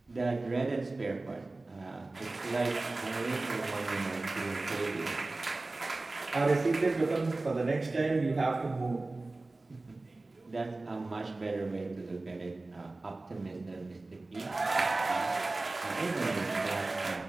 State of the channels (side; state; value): left; quieter; 3.2 dB